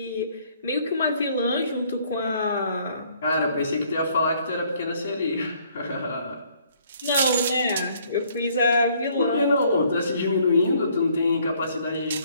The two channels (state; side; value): inverted; both; correlation -0.63